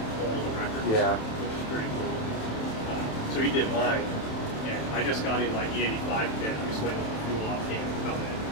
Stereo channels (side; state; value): right; late; 27 ms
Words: all the records. Yeah. Which is pretty cool. So he did mine, and I just got in like E85 kit. I'm just waiting for the fuel off can to come